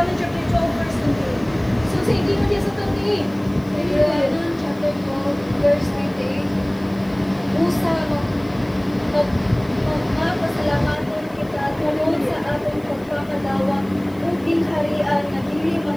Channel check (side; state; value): left; noise; hiss, 28 dB below the sound